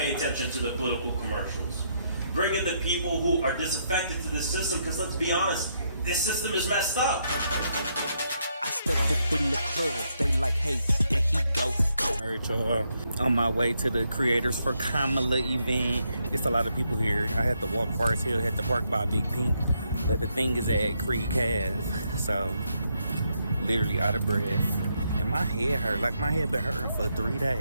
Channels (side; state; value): both; inverted; correlation -0.77